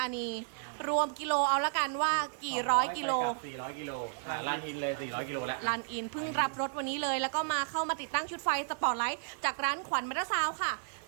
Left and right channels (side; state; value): left; silent; digital silence